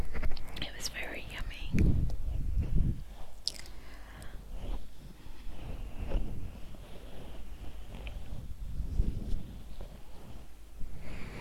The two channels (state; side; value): identical; both; correlation 1.00